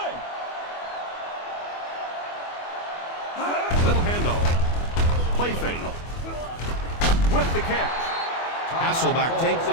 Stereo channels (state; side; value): late; right; 24 ms